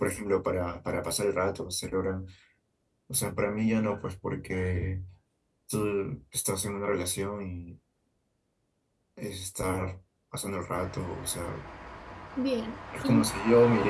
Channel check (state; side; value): identical; both; correlation 1.00